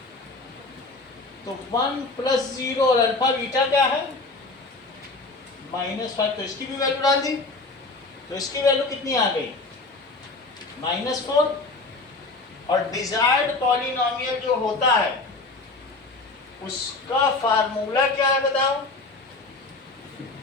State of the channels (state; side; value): quieter; right; 3.4 dB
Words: तो 1 प्लस 0 और अल्फा बीटा क्या है, -5, तो इसकी भी वैल्यू डाल दी, तो इसकी वैल्यू कितनी आ गई, -4। और डिजायर्ड पॉलिनोमियल जो होता है उसका फार्मूला क्या है बताओ,